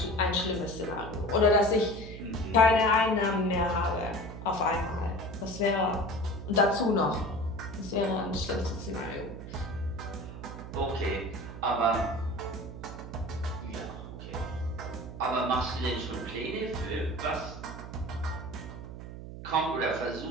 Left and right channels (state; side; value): noise; right; hum, 11 dB below the sound